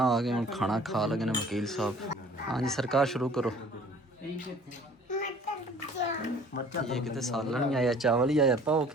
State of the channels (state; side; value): normal; both; correlation 0.51